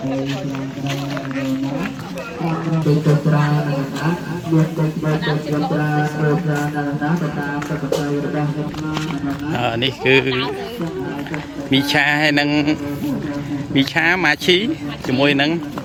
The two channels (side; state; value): both; identical; correlation 1.00